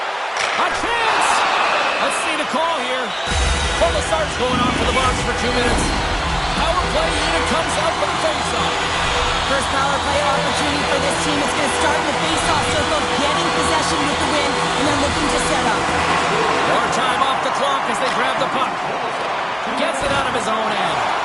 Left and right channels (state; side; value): identical; both; correlation 1.00